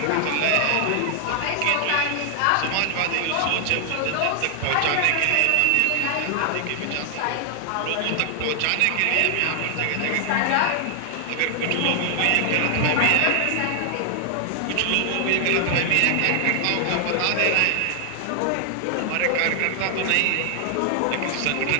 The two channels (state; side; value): different; both; correlation 0.00